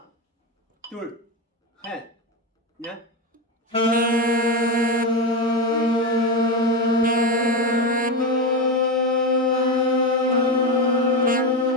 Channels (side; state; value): both; normal; correlation 0.14